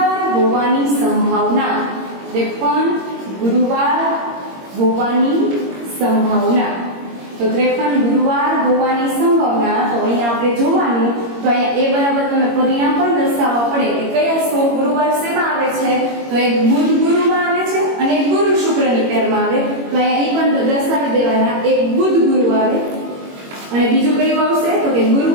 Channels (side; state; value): left; late; 21 ms